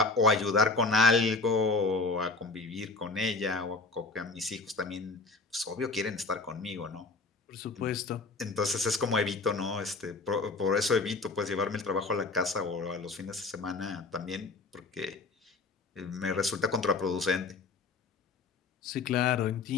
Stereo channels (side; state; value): right; quieter; 3.7 dB